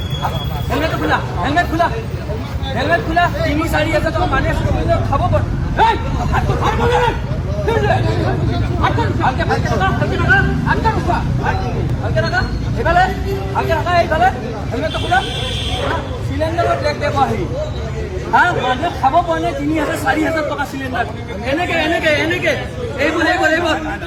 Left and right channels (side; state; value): both; identical; correlation 1.00